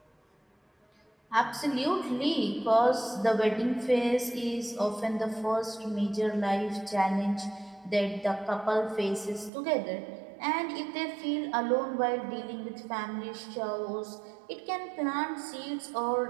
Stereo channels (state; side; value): drops out; left; at 9.5 s